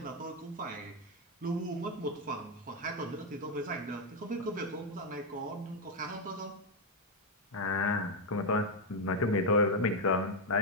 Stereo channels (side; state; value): both; normal; correlation 0.03